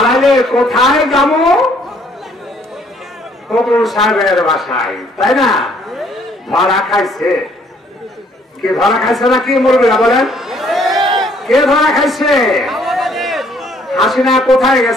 কোথায় যাবো? ফখরুল সাহেবের বাসায়, তাই না? ধরা খাইছে, কে ধরা খাইছে না কি মুরব্বিরা বলেন? কে ধরা খাইছে? হাসিনা কোথায়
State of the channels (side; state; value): both; normal; correlation 0.64